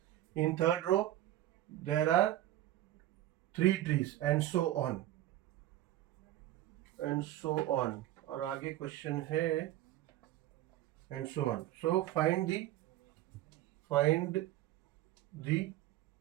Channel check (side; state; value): left; quieter; 14.2 dB